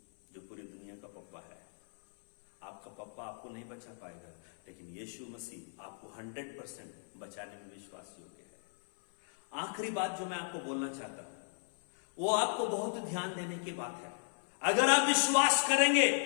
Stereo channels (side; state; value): right; silent; 54 dB below the other